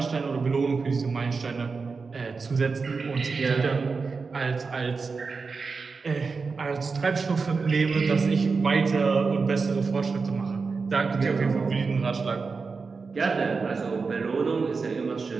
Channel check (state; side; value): quieter; left; 4.7 dB